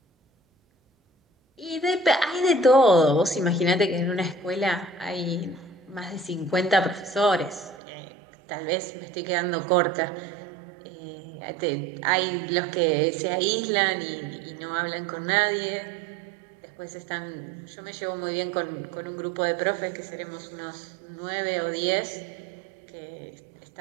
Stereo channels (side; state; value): left; drops out; at 7.8 s